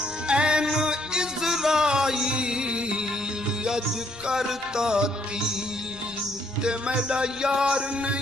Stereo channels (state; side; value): noise; left; rumble, 22 dB below the sound